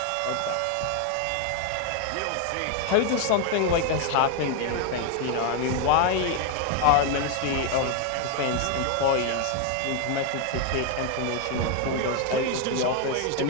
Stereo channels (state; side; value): different; both; correlation 0.01